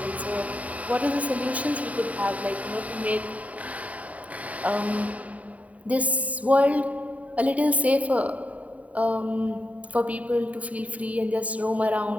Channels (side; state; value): left; late; 0.069 ms